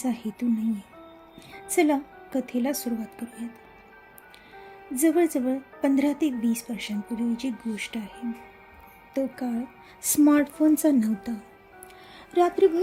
हेतू नाही आहे. चला कथेला सुरुवात करूयात. जवळजवळ 15 ते 20 वर्षांपूर्वीची गोष्ट आहे. तो काळ स्मार्टफोनचा नव्हता.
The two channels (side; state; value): both; identical; correlation 1.00